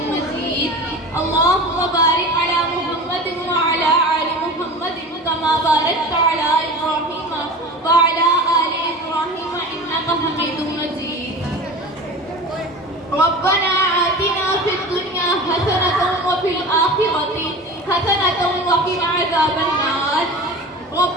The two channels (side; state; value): both; normal; correlation 0.34